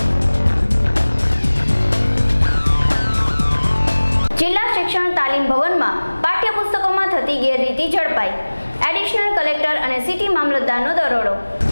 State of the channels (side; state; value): both; inverted; correlation -1.00